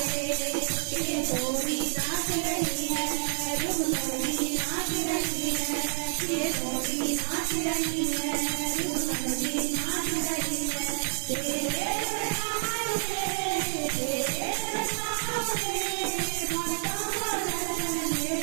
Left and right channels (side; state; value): left; silent; digital silence